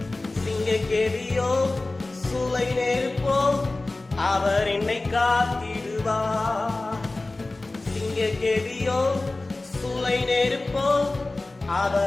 சிங்கக்கேதியோ சூளை நெருப்போ அவர் என்னை காத்திடுவார். சிங்கக்கேதியோ சூளை நெருப்போ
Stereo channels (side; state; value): right; quieter; 3.0 dB